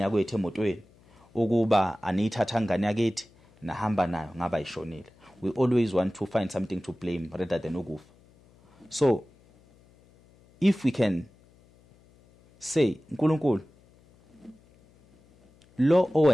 emotweni, ukuba aniyithatha ngane yakithi nahamba nayo ngaba ishonile. We always want to find something to blame rather than ukufa. So if we can say uNkulunkulu lo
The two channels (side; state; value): left; noise; hum, 29 dB below the sound